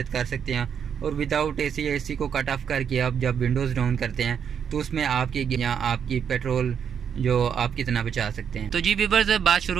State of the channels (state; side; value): quieter; left; 7.7 dB